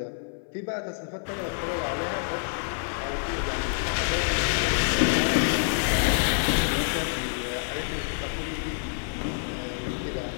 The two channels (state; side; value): silent; right; 56 dB below the other